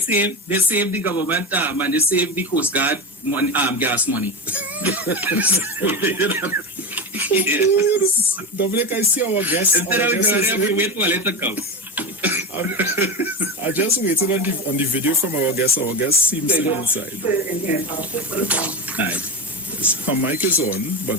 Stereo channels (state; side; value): normal; both; correlation 0.19